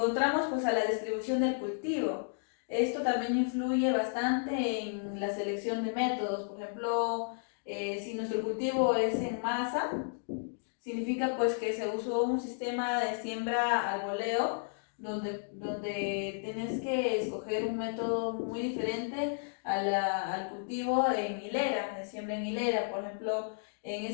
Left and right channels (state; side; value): silent; right; digital silence